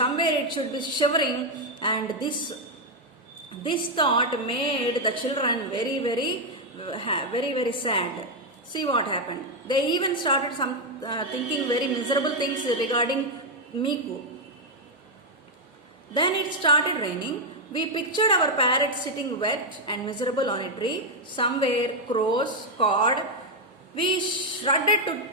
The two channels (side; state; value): both; normal; correlation 0.02